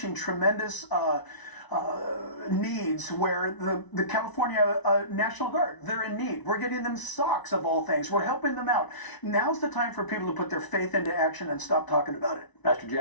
tremendous needs where the California National Guard, they're in need. We're getting them socks of all things. We're helping them out. Now's the time for people to put their faith into action and stop talking about it. Pastor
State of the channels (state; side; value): late; right; 1.0 ms